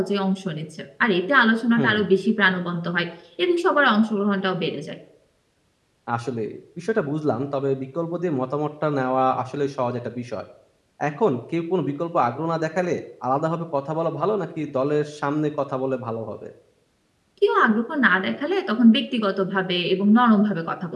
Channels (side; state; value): both; identical; correlation 1.00